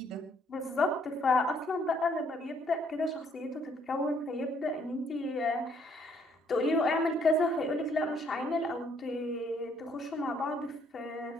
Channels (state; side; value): normal; both; correlation 0.67